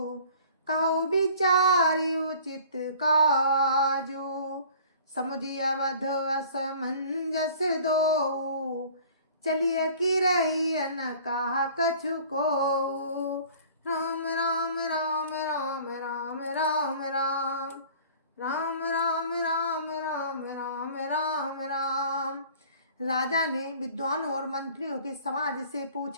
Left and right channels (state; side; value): inverted; both; correlation -0.48